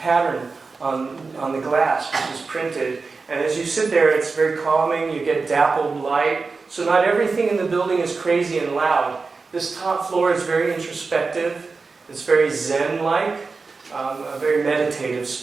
on the glass, which is printed. And as you sit there, it's very calming. You get dappled light. So not everything in the building is crazy and loud. This top floor is very introspective. It's very Zen-like. a very meditative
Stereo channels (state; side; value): quieter; left; 4.3 dB